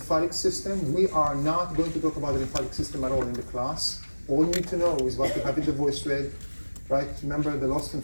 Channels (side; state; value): both; inverted; correlation -1.00